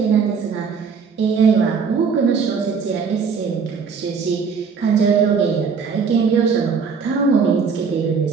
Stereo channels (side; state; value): left; quieter; 5.7 dB